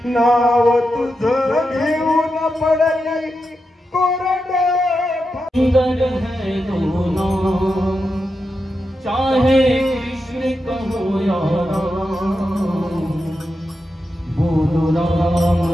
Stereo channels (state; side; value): normal; both; correlation 0.88